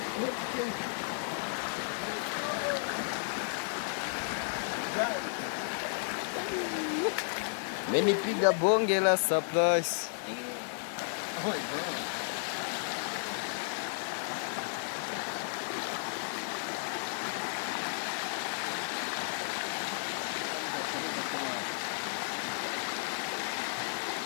Menipiga bonge la surprise. Oh my God.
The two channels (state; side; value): silent; right; digital silence